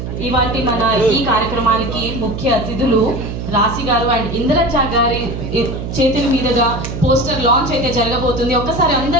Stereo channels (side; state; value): right; noise; hum, 6 dB below the sound